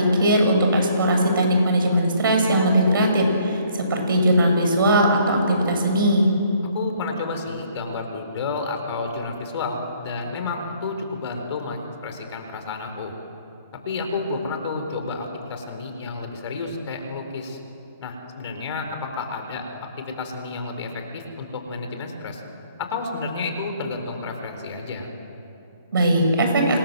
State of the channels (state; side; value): inverted; both; correlation -0.62